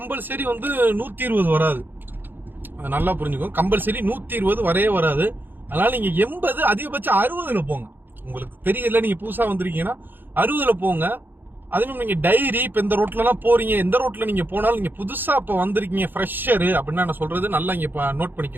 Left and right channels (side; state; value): left; late; 0.095 ms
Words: வந்து 120 வராது. அது நல்லா புரிஞ்சுக்கோங்க. கம்பல்சரி 120 வரவே வராது. அதனால நீங்க 80, அதிகபட்சம் 60ல போங்க. உங்களுக்கு தெரியல, நீங்க புதுசா வந்திருக்கீங்கன்னா 60ல போங்க. அதுவும் நீங்க டைரி இப்ப இந்த ரோட்ல எல்லாம் போறீங்க, எந்த ரோட்ல நீங்க போனாலும், நீங்க புதுசா இப்ப வந்திருக்கீங்க ஃப்ரெஷர் அப்படின்னா நான் சொல்றது நல்லா இங்க நோட்